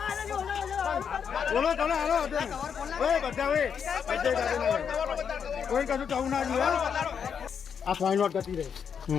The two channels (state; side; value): quieter; right; 7.2 dB